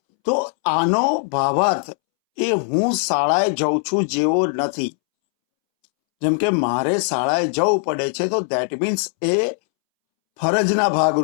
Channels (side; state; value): right; silent; 66 dB below the other